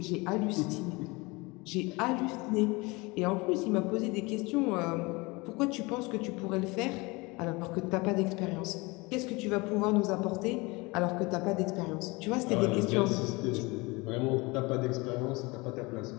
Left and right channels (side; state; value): right; quieter; 24.9 dB